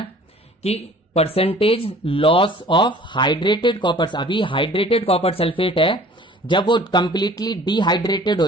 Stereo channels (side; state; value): both; normal; correlation 0.49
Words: कि percentage loss of hydrated copper, अभी हाइड्रेटेड कॉपर सल्फेट है, जब वो कंप्लीटली डिहाइड्रेटेड हो